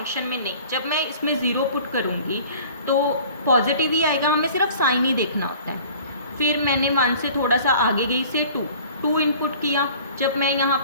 में नहीं। जब मैं इसमें 0 पुट करूँगी तो पॉजिटिव ही आएगा, हमें सिर्फ साइन ही देखना होता है। फिर मैंने 1 से थोड़ा सा आगे गई से 2 इनपुट किया। जब मैं यहाँ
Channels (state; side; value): inverted; both; correlation -0.47